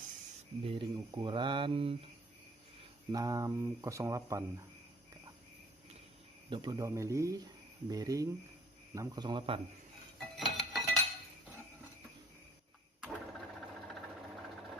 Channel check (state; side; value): normal; both; correlation 0.54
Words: bearing ukuran 608, 22 mili bearing 608.